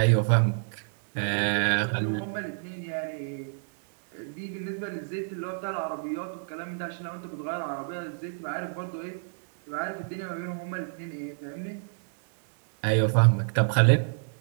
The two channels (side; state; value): left; silent; digital silence